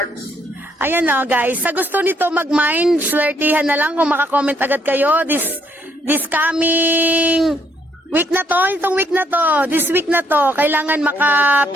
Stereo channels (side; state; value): both; normal; correlation 0.71